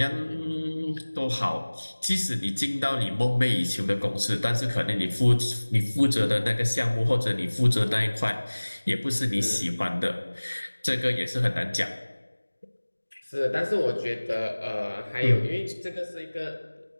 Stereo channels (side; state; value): both; inverted; correlation -1.00